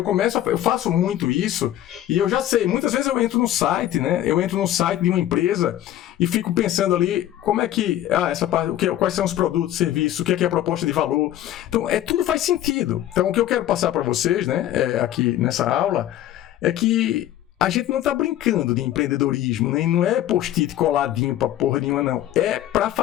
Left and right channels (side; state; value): right; quieter; 12.7 dB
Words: faço muito isso, e eu já sei, muitas vezes eu entro no site, né? Eu entro no site de uma empresa e fico pensando ali, como é que, essa parte, quais são os produtos, serviços, o que é a proposta de valor. Então, tudo faz sentido. Então, o que eu quero passar para vocês, né, aqui nessa aula, é que a gente não está brincando de empreendedorismo, nem não é post-it coladinho para porra nenhuma, não. É para